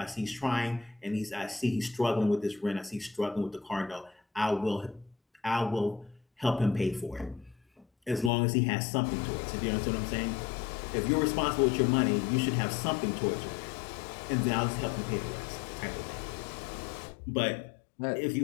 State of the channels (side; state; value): right; drops out; at 8.3 s